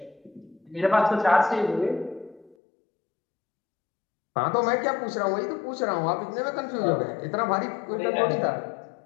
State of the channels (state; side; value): drops out; right; at 2.6 s